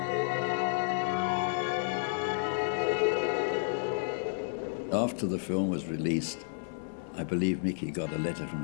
After the film was released, I believe Mickey got a letter from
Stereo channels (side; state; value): right; silent; 57 dB below the other